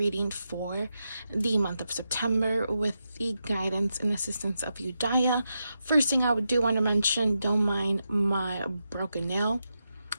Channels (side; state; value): both; inverted; correlation -0.87